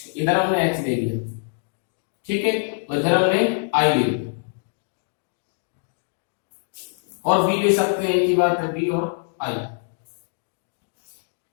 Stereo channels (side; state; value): right; silent; digital silence